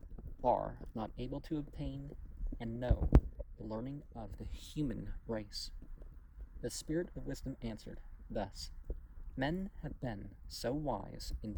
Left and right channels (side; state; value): both; identical; correlation 1.00